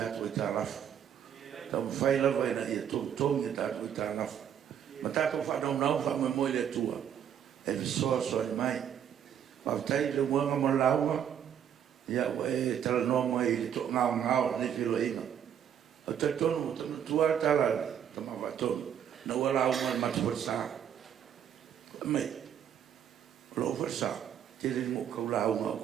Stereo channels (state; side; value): quieter; left; 9.1 dB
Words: e tā rafu. Tau whaila vai na ia tongi e tātou e tā rafu. Ma tātou whanau nau wha Moimoi le tua. E visoa soa i mai. Whawtai le muanga mo laua. Ia e tala noa mai le to ngao ne whiro inga. O te tonu, tonu tua tala, tama watonu. Na ua lau mai matu wharsa. Mei, lo wharsa. Te rin mo kau lau ma o